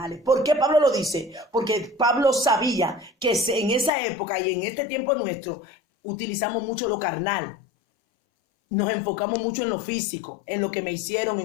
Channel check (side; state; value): right; drops out; at 3.9 s